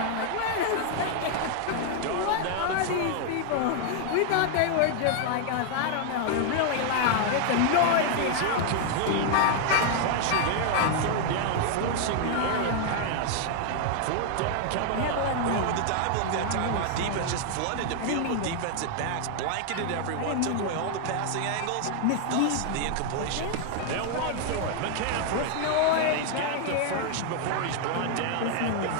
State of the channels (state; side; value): different; both; correlation 0.00